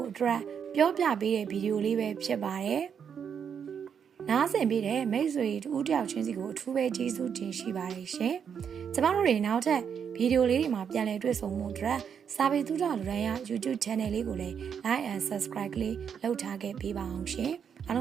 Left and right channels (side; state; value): left; quieter; 7.5 dB